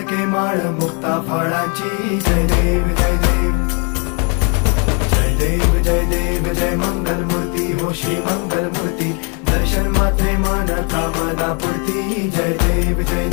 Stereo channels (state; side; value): quieter; right; 36.0 dB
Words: माळ मुक्ता फळाची जय देव जय देव जय देव जय देव जय मंगल मूर्ती हो श्री मंगल मूर्ती दर्शन मात्रे मान कामना पूर्ती जय देव जय